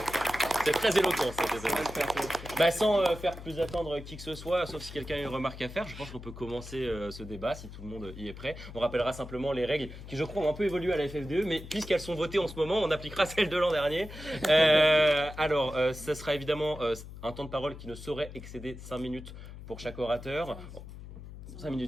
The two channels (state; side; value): noise; left; hum, 13 dB below the sound